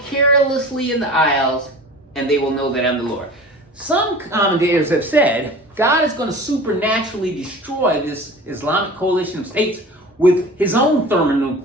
in the isles, and they will know that I am the Lord." Some commentators have said God is going to supernaturally destroy this Islamic coalition of states with his own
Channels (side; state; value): both; normal; correlation 0.39